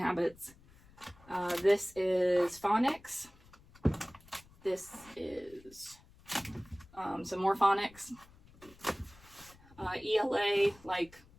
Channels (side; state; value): left; noise; rumble, 25 dB below the sound